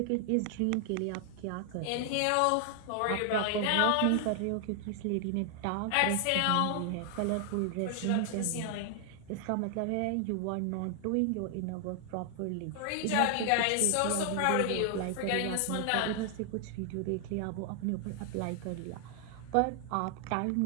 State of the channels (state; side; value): different; both; correlation 0.00